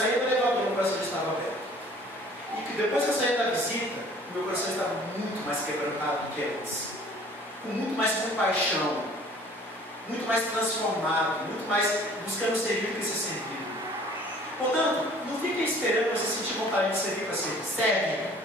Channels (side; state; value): both; normal; correlation 0.52